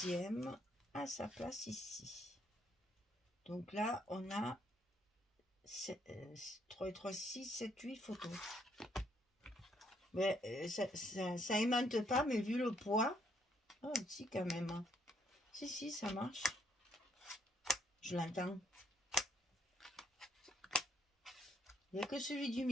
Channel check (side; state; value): both; normal; correlation 0.70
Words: à sa place ici. Donc là, on a 3 et 3, 6, 7, 8 photos. Mais ça aimante pas, mais vu le poids, oh, si quand même. Si, ça marche. Je l'entends. Il n'y a que celui du